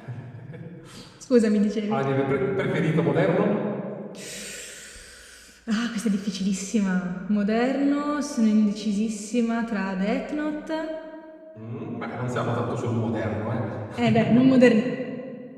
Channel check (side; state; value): both; identical; correlation 1.00